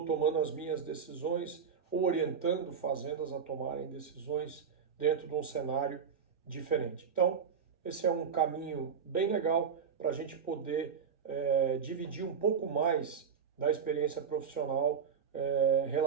tomando as minhas decisões ou orientando fazendas a tomarem decisões dentro de um cenário diferente. Então, esse é um caminho bem legal para a gente poder dividir um pouco mais da experiência profissional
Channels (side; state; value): left; quieter; 6.7 dB